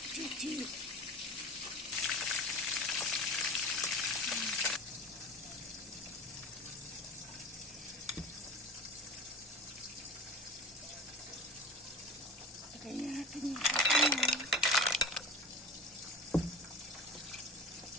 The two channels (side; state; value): both; normal; correlation 0.35